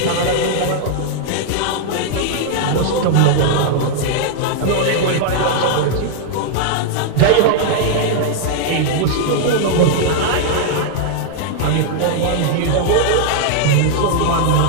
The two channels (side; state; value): both; different; correlation -0.01